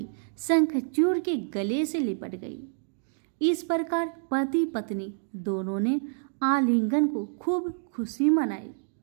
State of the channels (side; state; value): left; silent; digital silence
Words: शंखचूड़ के गले से लिपट गई। इस प्रकार पति पत्नी दोनों ने आलिंगन को खूब खुशी मनाई।